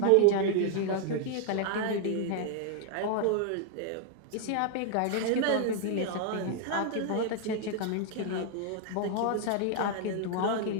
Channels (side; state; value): both; different; correlation 0.00